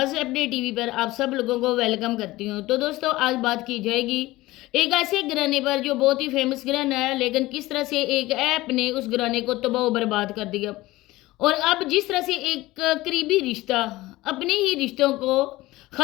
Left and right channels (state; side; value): quieter; right; 18.6 dB